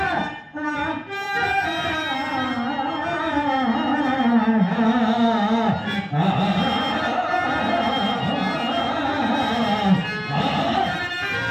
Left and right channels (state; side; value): identical; both; correlation 1.00